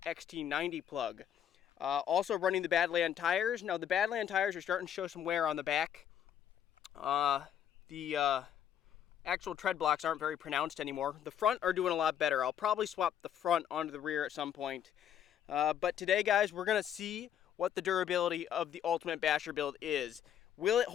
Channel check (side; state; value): right; quieter; 9.6 dB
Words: XT90 plug. Also running the Badland tires. Now the Badland tires are starting to show some wear on the back. The actual tread blocks aren't very pronounced anymore. The front are doing a lot better. I'll probably swap the front onto the rear at some point. But today, guys, we're going to see what the durability of the Ultimate Basher build is. Will it